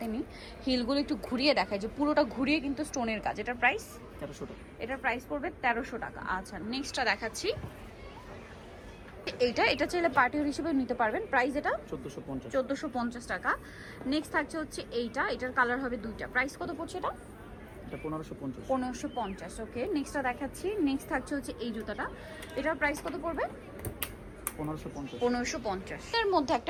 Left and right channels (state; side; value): identical; both; correlation 1.00